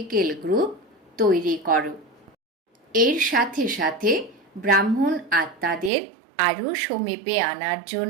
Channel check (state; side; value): drops out; left; at 5.9 s